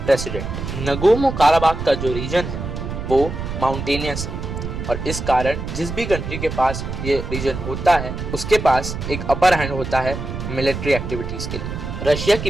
प्रेसिडेंट। नगोर्नो काराबाख का जो रीजन है वो माउंटेनियस है और इस कारण जिस भी कंट्री के पास ये रीजन होता है उसके पास एक अपर हैंड होता है मिलिट्री एक्टिविटीज़ के लिए। रशिया की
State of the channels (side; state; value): right; noise; rumble, 6 dB below the sound